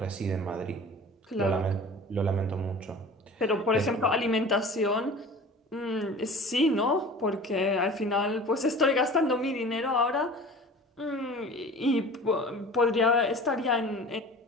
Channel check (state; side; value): normal; both; correlation 0.41